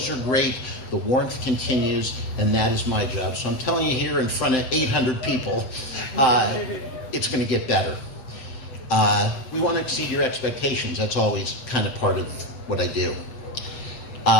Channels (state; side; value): late; right; 7.7 ms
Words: are great, the warmth continues, and that is my job. So I'm telling you here in front of 800 people, it's going to get better. We want to exceed your expectations. That's always kind of part of what I do.